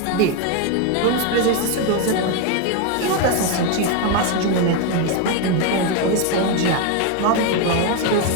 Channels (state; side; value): different; both; correlation 0.01